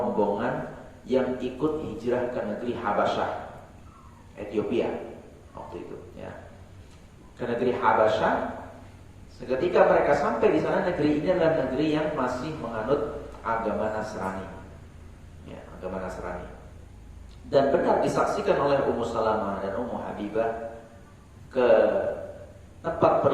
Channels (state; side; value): identical; both; correlation 1.00